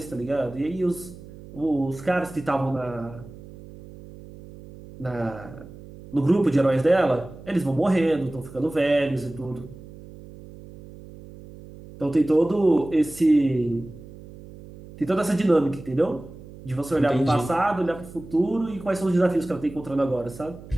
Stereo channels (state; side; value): noise; right; hum, 17 dB below the sound